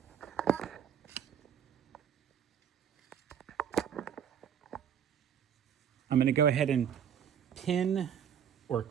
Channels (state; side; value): quieter; left; 8.6 dB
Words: going to go ahead and pin or